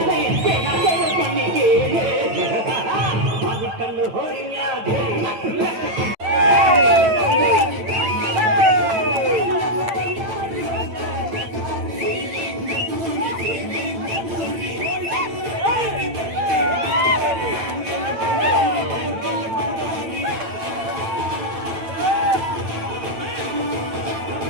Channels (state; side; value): late; left; 8.8 ms